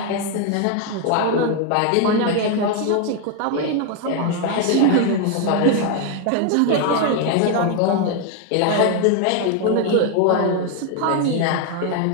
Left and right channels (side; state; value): both; different; correlation 0.01